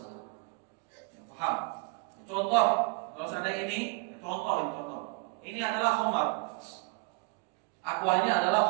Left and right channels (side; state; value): left; quieter; 28.6 dB